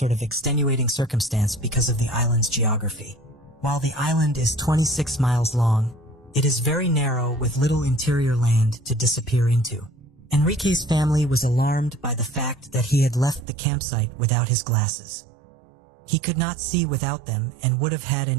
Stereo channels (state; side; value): drops out; left; at 13.5 s